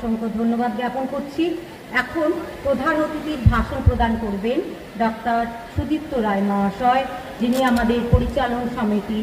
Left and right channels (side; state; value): both; identical; correlation 1.00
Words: ধন্যবাদ জ্ঞাপন করছি। এখন প্রধান অতিথির ভাষণ প্রদান করবেন ডক্টর সুদীপ্ত রায় মহাশয়, যিনি আমাদের পরিচালন